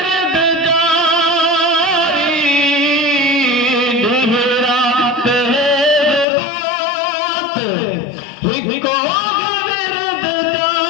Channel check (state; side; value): drops out; right; at 6.2 s